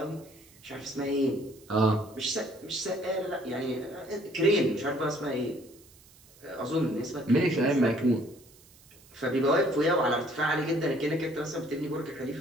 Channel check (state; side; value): noise; right; hiss, 26 dB below the sound